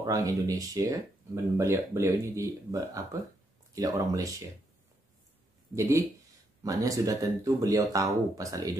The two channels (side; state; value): both; normal; correlation 0.78